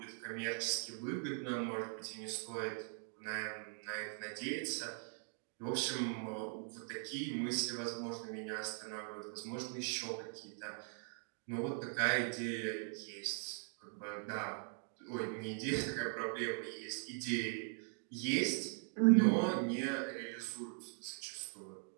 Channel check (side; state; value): left; silent; 50 dB below the other